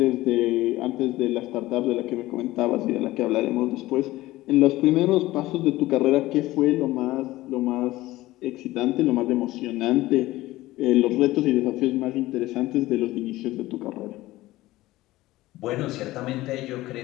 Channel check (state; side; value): quieter; right; 17.5 dB